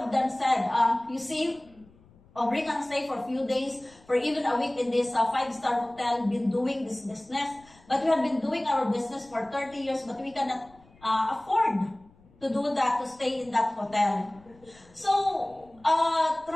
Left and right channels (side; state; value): left; noise; rumble, 28 dB below the sound